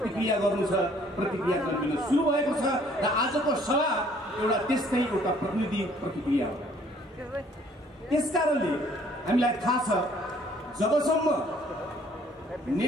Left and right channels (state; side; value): normal; both; correlation 0.59